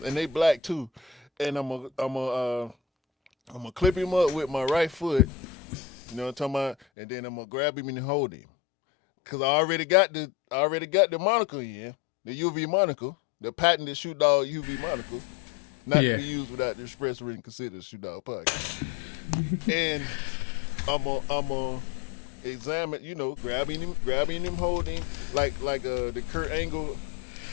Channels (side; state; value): right; drops out; at 6.8 s